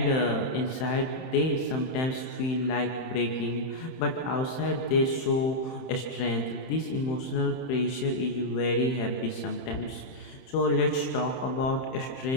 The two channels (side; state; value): right; late; 31 ms